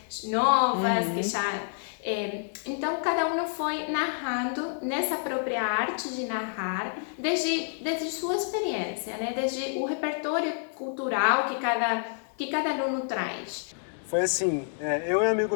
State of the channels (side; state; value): right; silent; 59 dB below the other